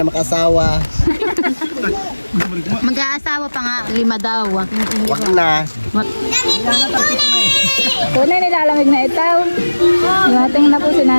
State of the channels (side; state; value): both; inverted; correlation -1.00